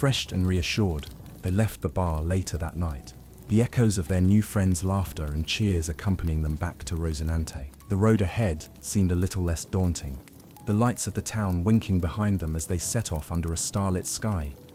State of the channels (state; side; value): identical; both; correlation 1.00